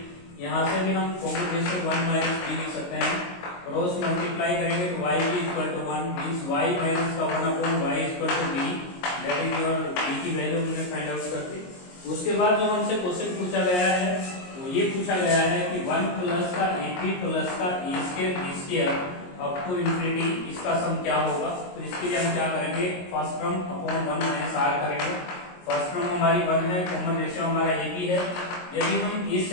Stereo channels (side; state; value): right; late; 22 ms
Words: यहाँ से भी हम कॉम्बिनेशन 1 minus b लिख सकते हैं, क्रॉस मल्टीप्लाई करेंगे तो y भी equal to 1 means y minus का 1/y equal to b, that is your b की वैल्यू हमने फाइंड आउट कर दी। उसके बाद जो हमसे क्वेश्चन पूछा गया है वो ये पूछा गया है कि 1 प्लस का ap प्लस का a square b square up to infinity, इसका सम क्या होगा। तो इसके लिए हम क्या करेंगे, first term upon 1 minus r करेंगे। फर्स्ट टर्म हमारी 1 है, कॉमन रेशियो हमारा ab है। यदि हम इस